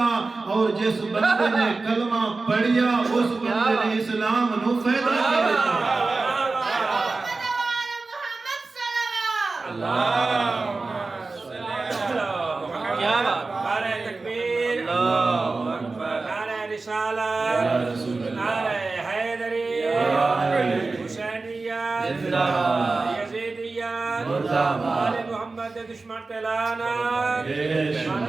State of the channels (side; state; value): left; quieter; 3.7 dB